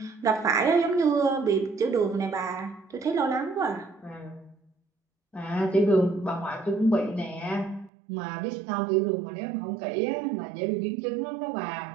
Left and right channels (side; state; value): left; drops out; at 7.9 s